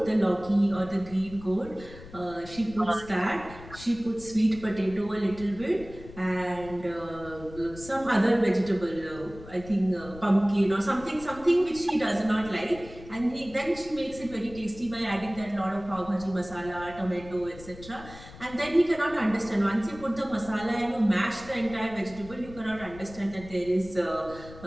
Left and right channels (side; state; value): left; noise; rumble, 17 dB below the sound